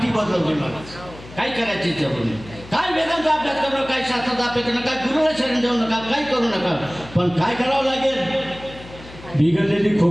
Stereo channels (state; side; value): noise; left; hum, 17 dB below the sound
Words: बदलवली. काय करायची जरूर नाही. काय वेदांचा अभ्यास करू नका, काय शास्त्राचा अभ्यास करू नका, गुरुला शरण जाऊ नका, काही करू नका. पण काय करावं लागेल? बिघडलेली